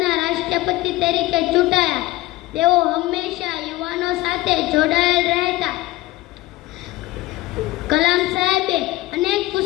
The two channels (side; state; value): right; quieter; 18.0 dB